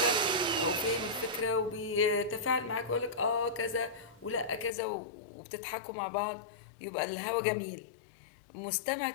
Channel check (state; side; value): drops out; right; at 4.7 s